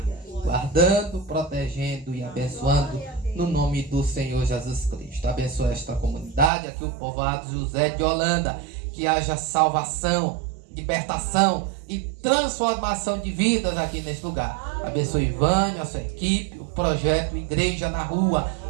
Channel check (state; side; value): drops out; left; at 6.5 s